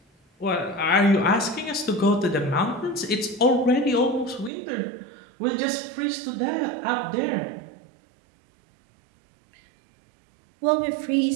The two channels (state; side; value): drops out; left; at 4.5 s